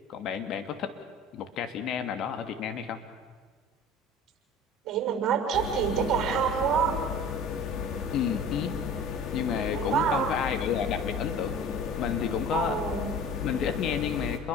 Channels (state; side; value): normal; both; correlation 0.40